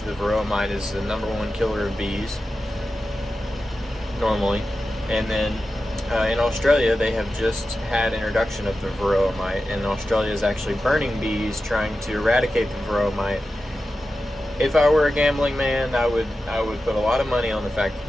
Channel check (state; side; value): normal; both; correlation 0.92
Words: the Varroa mite is the #1 killer of bees, normally. And then in Australia, they have just had introduction of the Varroa mite, and Australia is actually burning bees, trying to eradicate the Varroa mite. If I were a gambling man, I would put a lot of money on the fact that